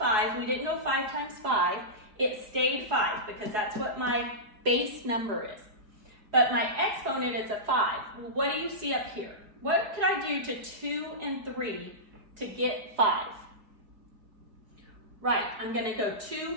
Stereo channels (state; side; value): late; left; 4.8 ms